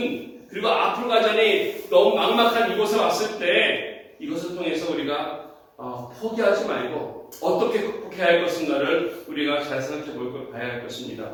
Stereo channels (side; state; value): both; identical; correlation 1.00